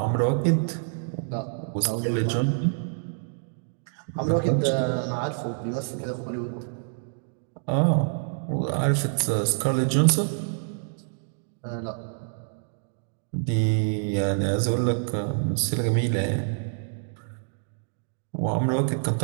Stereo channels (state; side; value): silent; left; digital silence